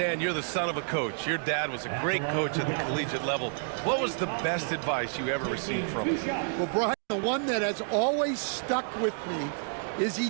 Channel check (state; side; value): silent; left; digital silence